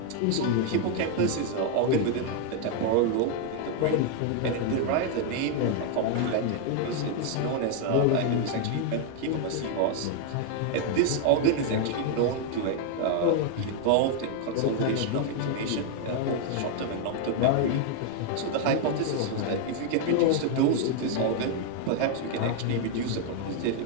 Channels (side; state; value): both; different; correlation 0.00